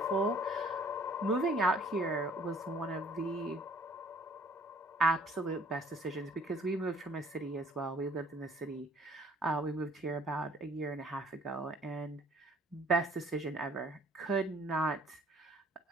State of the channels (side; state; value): both; normal; correlation 0.57